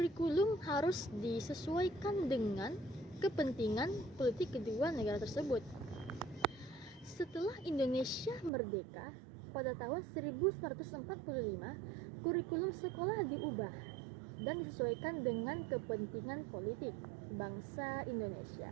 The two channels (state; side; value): drops out; left; at 8.5 s